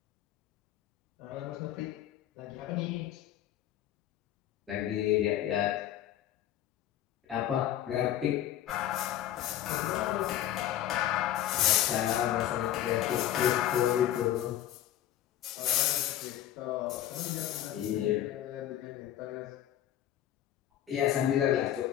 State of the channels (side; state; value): right; quieter; 11.9 dB